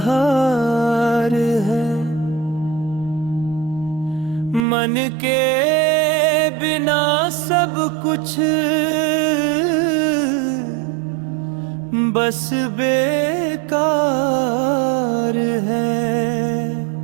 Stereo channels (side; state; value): left; drops out; at 4.7 s